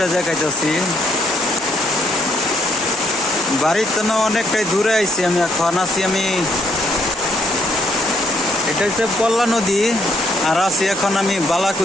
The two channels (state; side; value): normal; both; correlation 0.71